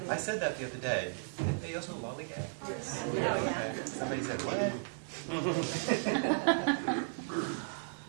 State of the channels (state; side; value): silent; left; 54 dB below the other